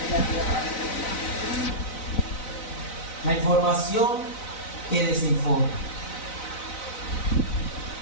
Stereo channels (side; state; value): right; late; 4.0 ms